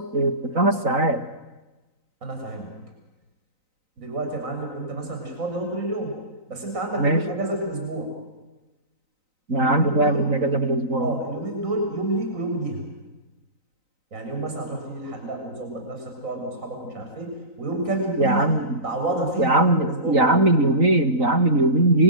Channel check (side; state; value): left; late; 3.9 ms